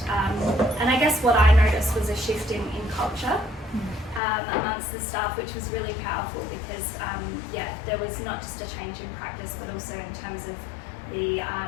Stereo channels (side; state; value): right; drops out; at 4.2 s